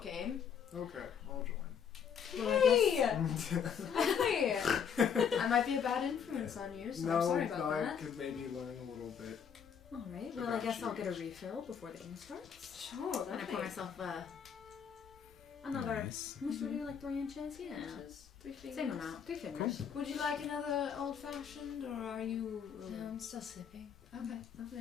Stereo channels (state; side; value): quieter; right; 7.4 dB